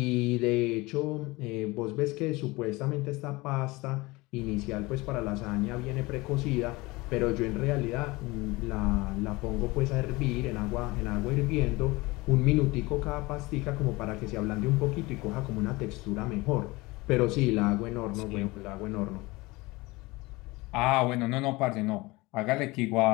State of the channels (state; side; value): quieter; right; 22.5 dB